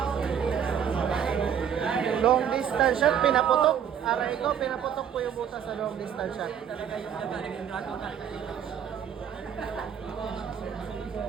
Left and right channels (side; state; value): left; quieter; 8.5 dB